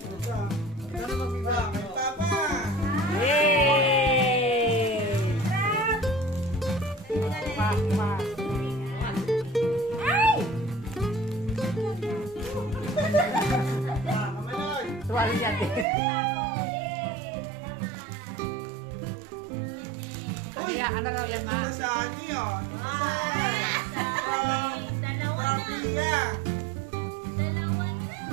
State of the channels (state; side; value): drops out; left; at 15.9 s